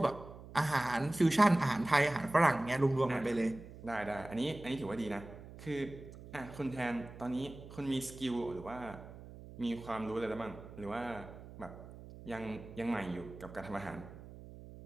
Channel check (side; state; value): right; noise; hum, 15 dB below the sound